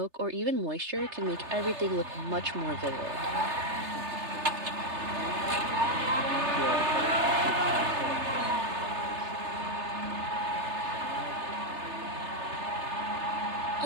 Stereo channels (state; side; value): late; left; 3.3 ms